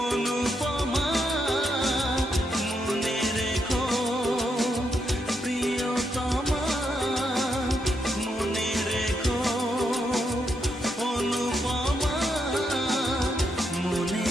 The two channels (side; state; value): both; normal; correlation 0.80